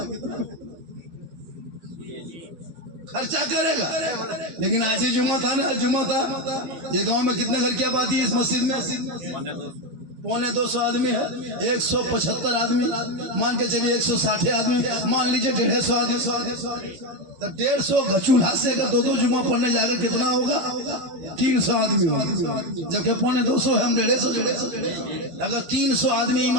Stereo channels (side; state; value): left; late; 13 ms